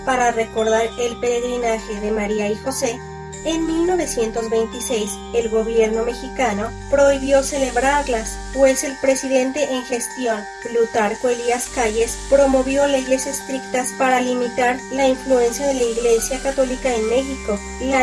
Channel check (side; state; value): both; identical; correlation 1.00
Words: para recordar el peregrinaje de María y José, en 1926 el gobierno mexicano prohibió celebrarlas, pues el presidente en gestión, Plutarco Elías Calles, promovió leyes estrictas para limitar la influencia de la Iglesia Católica en México.